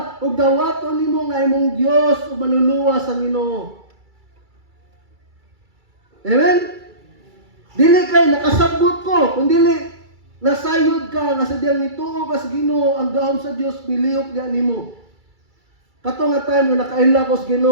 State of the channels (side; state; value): left; late; 2.3 ms